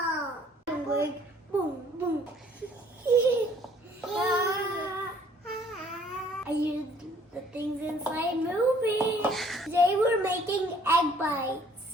Like boom, boom. I used the things inside moving. Today we're making egg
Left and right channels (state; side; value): normal; both; correlation 0.59